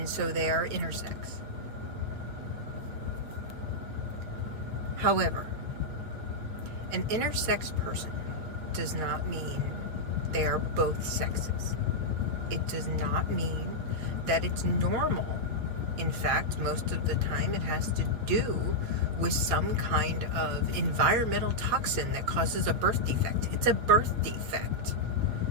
so they are intersex. However, an intersex person does not mean they are both sexes. It does not mean that it's normal. In fact, most of the time it has to do with some kind of environmental toxin that causes a birth defect. It's a birth defect.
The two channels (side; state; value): left; late; 8.7 ms